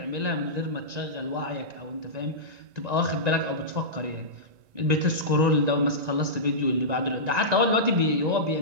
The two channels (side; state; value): left; late; 1.9 ms